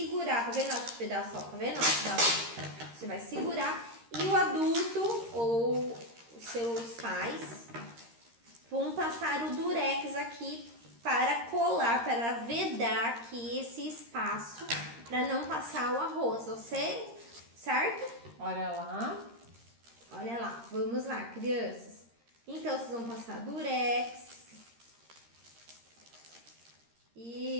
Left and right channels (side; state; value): left; late; 13 ms